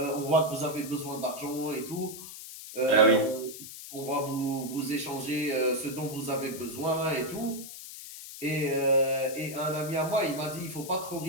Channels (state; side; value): noise; left; hiss, 12 dB below the sound